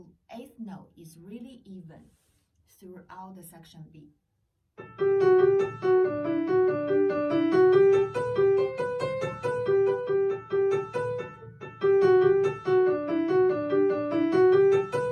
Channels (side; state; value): both; identical; correlation 1.00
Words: 8th note is really even throughout the section B.